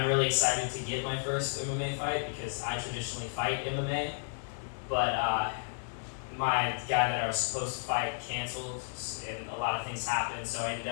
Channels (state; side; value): silent; right; digital silence